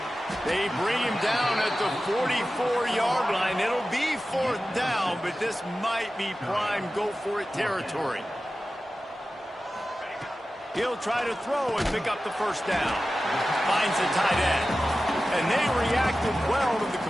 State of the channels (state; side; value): normal; both; correlation 0.94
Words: They bring him down at the 44-yard line. It'll be fourth down, but this might be prime go-for-it territory. He'll try to throw and pick up the first down. Finds the tight end. And they reacted well to the